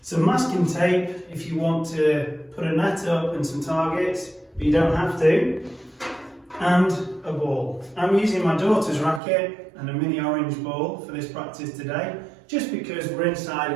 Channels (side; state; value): left; drops out; at 9.2 s